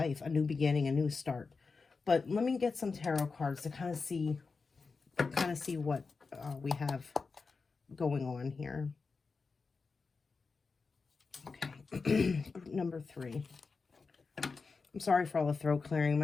a new beginning, a new start. But let me get some tarot cards to kind of see what we have going on here. Okay, group number 3. I'm sorry for all the throat clearing.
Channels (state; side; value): quieter; right; 4.5 dB